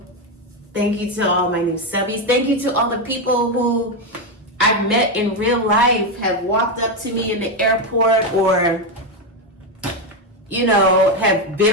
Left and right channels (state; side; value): normal; both; correlation 0.08